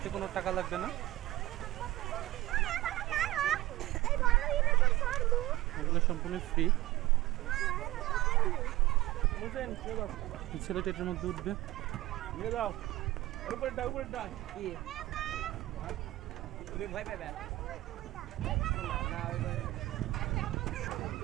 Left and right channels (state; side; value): quieter; left; 17.3 dB